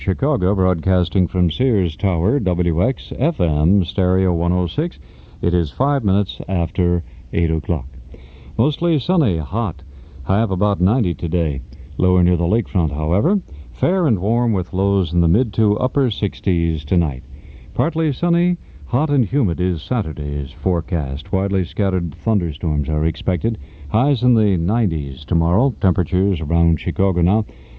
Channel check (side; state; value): both; identical; correlation 1.00